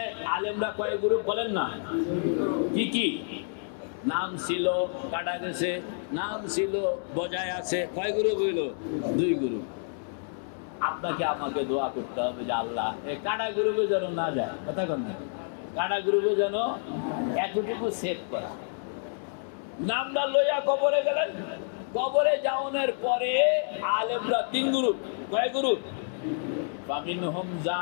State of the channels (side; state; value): right; silent; 59 dB below the other